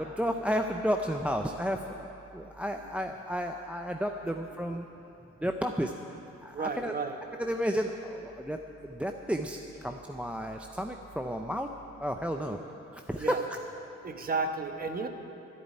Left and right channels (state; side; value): normal; both; correlation 0.67